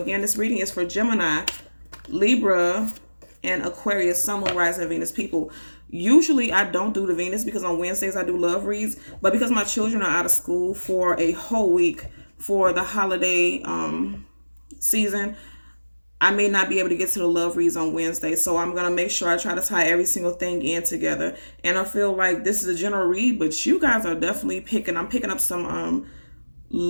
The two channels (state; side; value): inverted; both; correlation -1.00